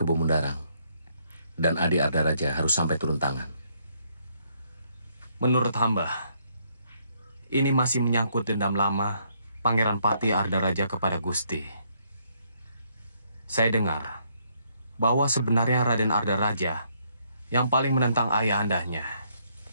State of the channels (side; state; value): both; inverted; correlation -0.71